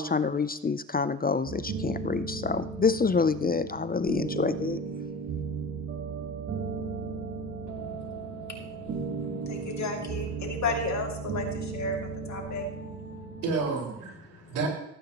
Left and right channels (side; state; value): both; normal; correlation 0.29